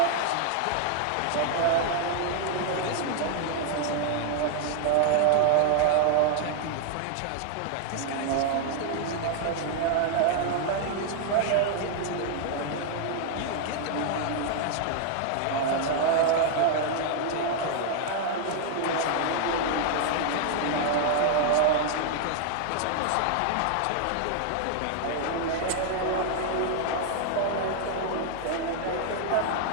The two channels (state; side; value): different; both; correlation 0.00